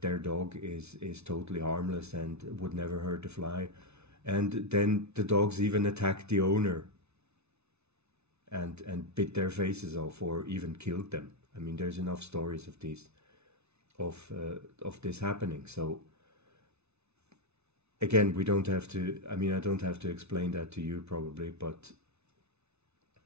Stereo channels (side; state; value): left; late; 0.81 ms